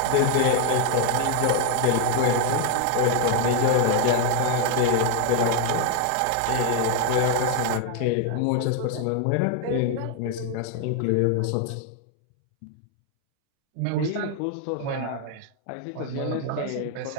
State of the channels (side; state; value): both; different; correlation 0.01